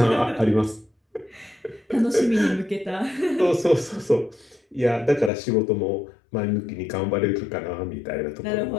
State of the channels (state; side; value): drops out; right; at 5.3 s